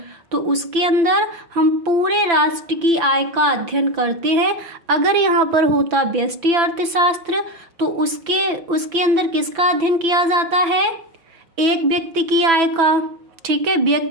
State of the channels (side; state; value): left; late; 5.9 ms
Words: तो उसके अंदर हम पूरे राष्ट्र की आय का अध्ययन करते हैं। अगर यहाँ पर होता व्यष्टि अर्थशास्त्र तो उसके अंदर किसका अध्ययन किया जाता है? एक व्यक्ति की आय का। ठीक है,